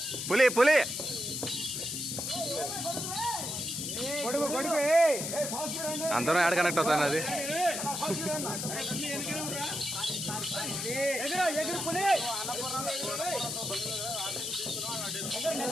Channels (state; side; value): noise; left; hiss, 3 dB below the sound